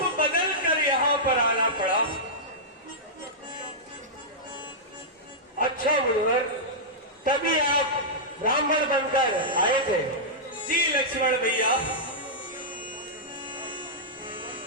बदलकर यहाँ पर आना पड़ा। अच्छा मुनिवर, तभी आप ब्राह्मण बनकर आए थे। जी लक्ष्मण भैया।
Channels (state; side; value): normal; both; correlation -0.11